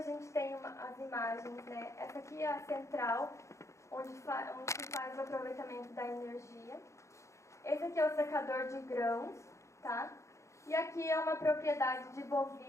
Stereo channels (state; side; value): late; right; 0.14 ms